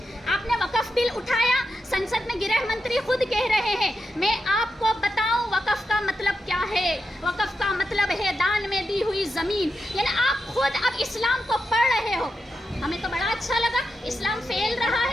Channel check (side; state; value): both; normal; correlation 0.87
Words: आपने वक़फ़ बिल उठाया, संसद में गृह मंत्री खुद कह रहे हैं, मैं आपको बताऊं वक़फ़ का मतलब क्या है। वक़फ़ का मतलब है दान में दी हुई ज़मीन। यानी आप खुद अब इस्लाम को पढ़ रहे हो। हमें तो बड़ा अच्छा लगा, इस्लाम फैल रहा